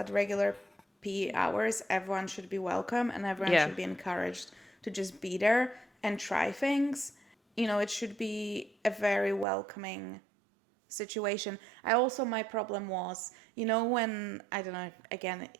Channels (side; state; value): left; drops out; at 9.5 s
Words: regular PE hours, everyone should be welcome and everyone Yeah. should be encouraged to just be there and try things. It should be a very welcoming situation. My problem was, when, I don't know, again,